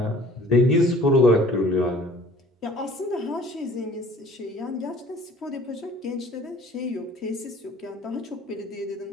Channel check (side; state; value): both; normal; correlation 0.52